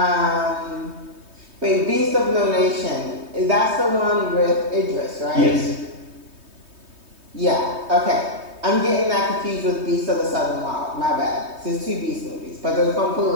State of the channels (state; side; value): late; left; 3.2 ms